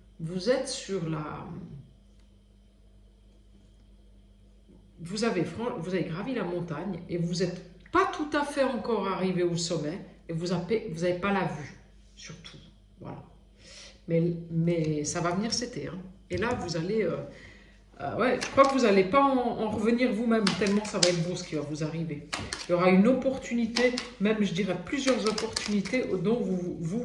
Vous êtes sur la... Vous avez gravi la montagne et vous n'êtes pas tout à fait encore arrivé au sommet et vous n'avez pas la vue, surtout. Voilà. Mais ça va venir cet été. Hein. Et là, vous allez... ouais, je crois que vous n'allez pas en revenir vous-même, tellement ça va être beau ce qui va vous arriver. Il y aura une opportunité, même je dirais plusieurs opportunités dont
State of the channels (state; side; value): identical; both; correlation 1.00